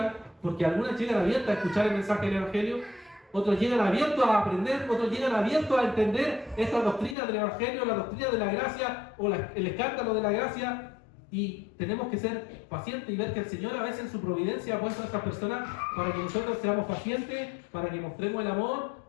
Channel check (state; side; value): drops out; right; at 7.2 s